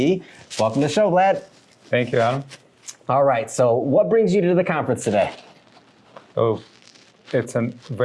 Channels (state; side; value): identical; both; correlation 1.00